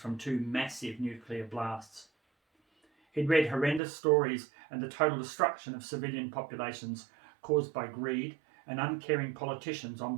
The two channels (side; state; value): left; drops out; at 3.8 s